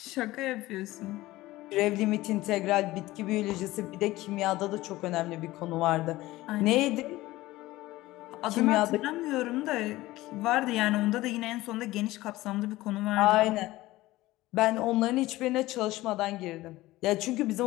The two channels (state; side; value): quieter; right; 17.9 dB